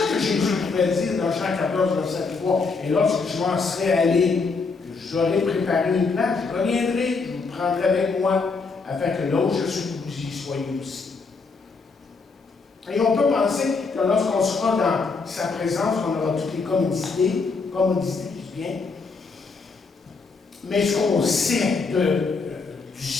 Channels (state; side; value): quieter; right; 4.4 dB